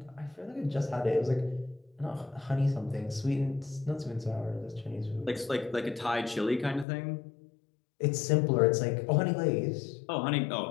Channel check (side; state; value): right; drops out; at 6.9 s